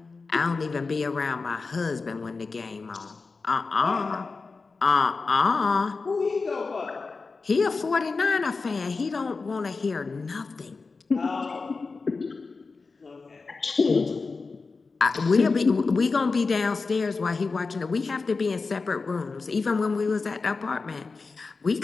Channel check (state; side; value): quieter; right; 4.2 dB